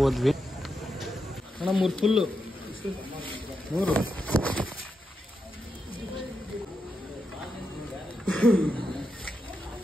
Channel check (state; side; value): normal; both; correlation 0.86